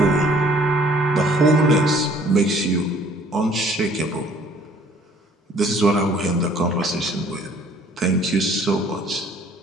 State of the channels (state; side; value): normal; both; correlation 0.57